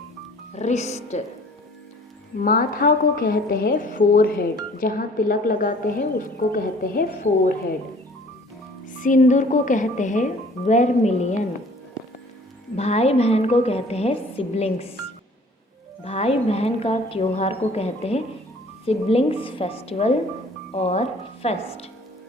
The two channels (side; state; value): both; normal; correlation 0.52